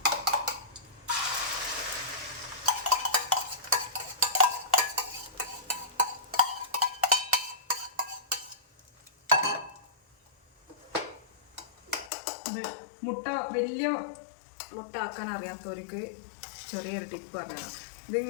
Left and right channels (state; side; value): drops out; right; at 12.1 s